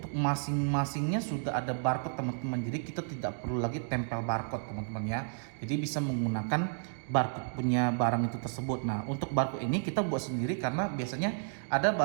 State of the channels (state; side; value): silent; left; digital silence